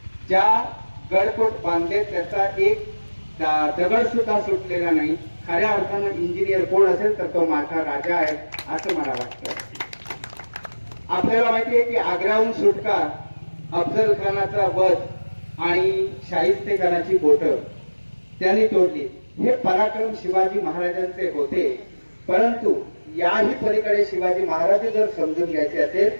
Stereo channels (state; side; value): inverted; both; correlation -1.00